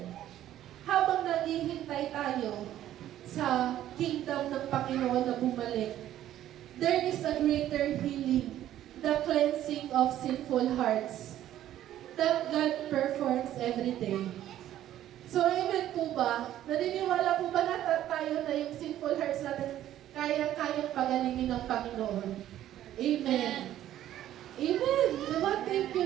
habang naghihintay tayo sa kingdom ng Panginoon na bumalik, there is a greater healing, the cleansing of sinful hearts that God performs every day. So, amen po ba? Naniniwala po ba na tayo na yung sinful hearts natin kayang pagalingin ng Panginoon? Amen. Amen. Diba? Thank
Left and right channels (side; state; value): left; quieter; 12.4 dB